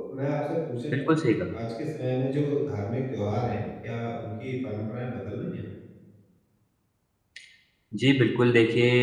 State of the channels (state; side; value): identical; both; correlation 1.00